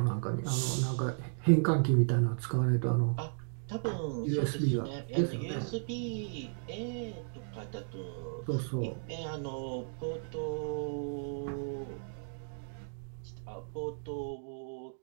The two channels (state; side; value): silent; left; digital silence